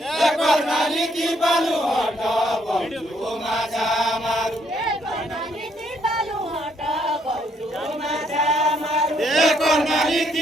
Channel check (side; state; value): both; normal; correlation 0.70